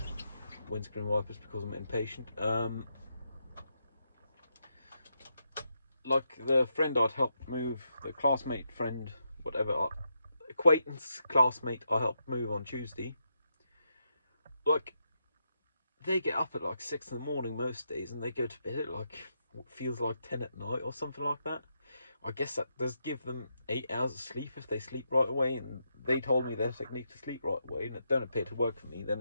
Windscreen wipers because I'm impatient. Like the friend I'd helped move, the classmate friend, whatever, acquaintance, classmate I helped move on Tuesday. Like, they get up at like 6 in the morning most days and they go to bed at like what feels like 10 at night or something like that. I guess that does give them 8 hours of sleep if they sleep right away, and they told me their technique to sleep right away, and it don't appear to work for me. Then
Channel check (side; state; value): both; inverted; correlation -0.83